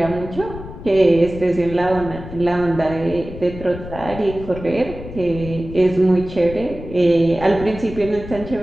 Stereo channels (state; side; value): noise; left; rumble, 12 dB below the sound